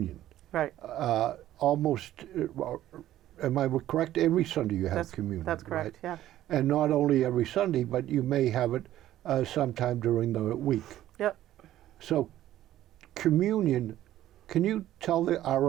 Right. Almost, am I correct? Every Sunday you have communion. That's correct, right? Yeah. And not only every Sunday, but you may have it sometime during the week. Yep. So communion, can you tell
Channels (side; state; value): left; quieter; 13.3 dB